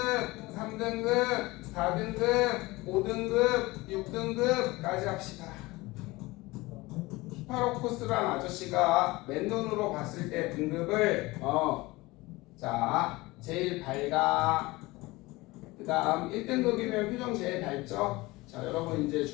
3등급, 4등급, 5등급, 6등급까지 합시다. 히파로코스란 아저씨가 맨눈으로 봤을 때 등급을 자, 제일 밝아. 그 다음 1등급이면 표정 제일 밝죠? 자, 여러분 이제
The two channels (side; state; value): right; quieter; 21.3 dB